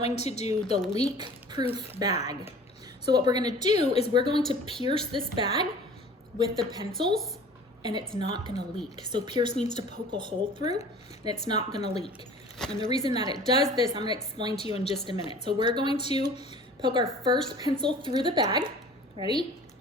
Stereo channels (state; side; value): normal; both; correlation 0.45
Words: to do the leak-proof bag. So what we're going to do is we're going to pierce this bag with the pencils, and it's not going to leak. So pierce means to poke a hole through, and it's not going to leak. And the reason that it does this, I'm going to explain to you in just a minute. So we're going to poke our first pencil through the bag. Ready?